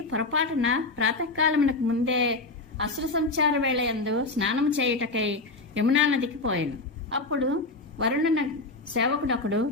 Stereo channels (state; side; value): quieter; right; 3.4 dB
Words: పొరపాటున ప్రాతకాలమునకు ముందే అసుర సంచార వేళయందు స్నానము చేయుటకై యమునా నదికి పోయాను. అప్పుడు వరుణ సేవకుడొకడు